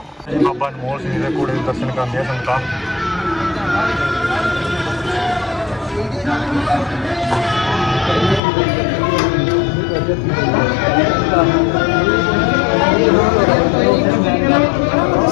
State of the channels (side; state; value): right; drops out; at 8.4 s